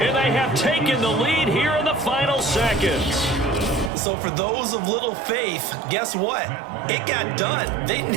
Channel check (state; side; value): drops out; left; at 3.9 s